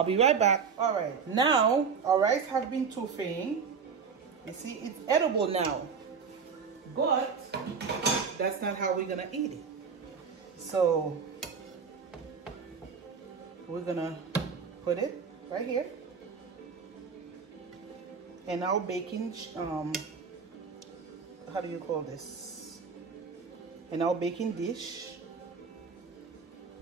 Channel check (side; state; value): left; quieter; 5.8 dB